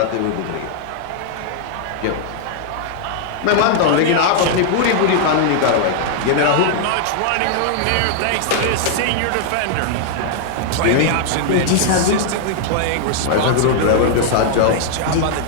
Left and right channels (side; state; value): both; different; correlation -0.01